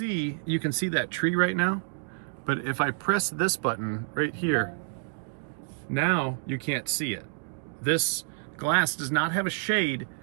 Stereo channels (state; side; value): silent; left; digital silence